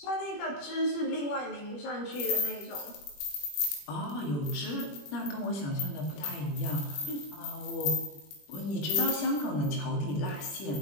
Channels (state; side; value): late; right; 21 ms